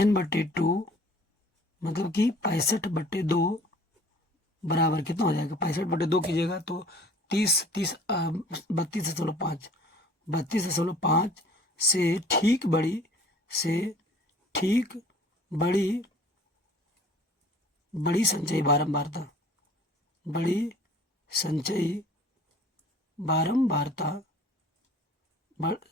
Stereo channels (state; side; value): normal; both; correlation 0.50